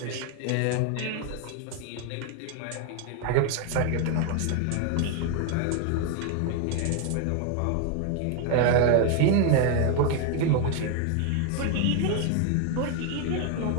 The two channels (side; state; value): both; different; correlation 0.01